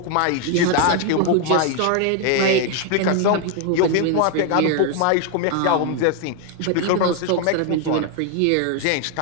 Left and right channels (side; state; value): both; different; correlation 0.01